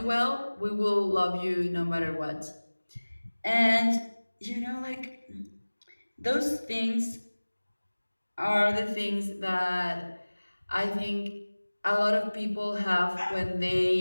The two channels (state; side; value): inverted; both; correlation -1.00